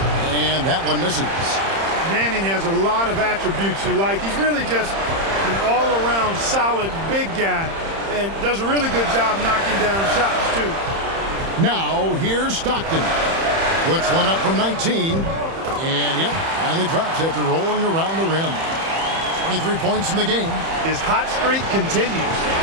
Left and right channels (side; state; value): left; late; 30 ms